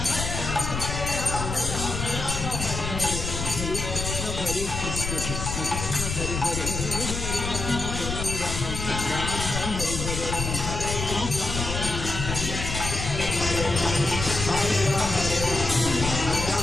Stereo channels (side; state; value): left; noise; rumble, 4 dB below the sound